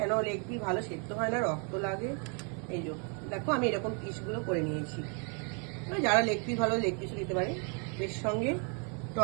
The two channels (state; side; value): quieter; left; 38.0 dB